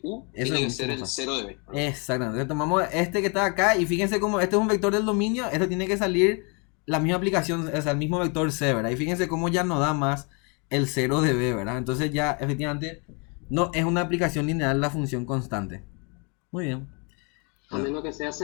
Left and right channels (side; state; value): right; quieter; 34.0 dB